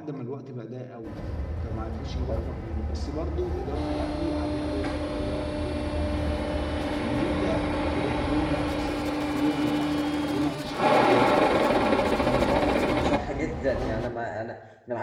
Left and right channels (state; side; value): identical; both; correlation 1.00